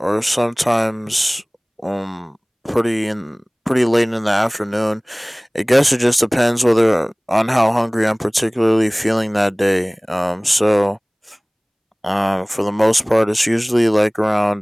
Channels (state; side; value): identical; both; correlation 1.00